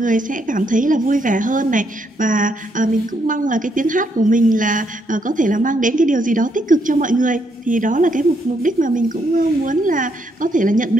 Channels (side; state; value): both; normal; correlation 0.75